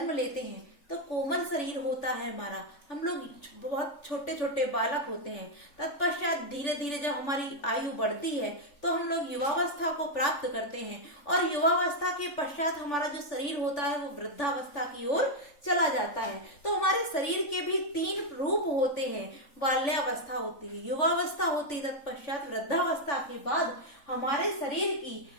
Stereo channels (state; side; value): late; right; 3.5 ms